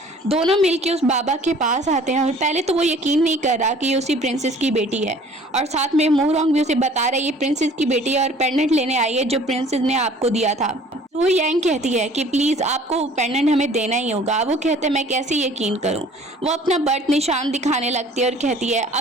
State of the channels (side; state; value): both; normal; correlation 0.51